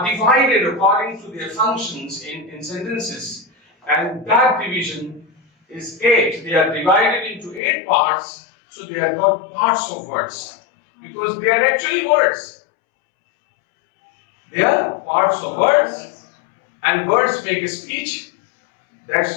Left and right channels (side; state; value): right; drops out; at 7.6 s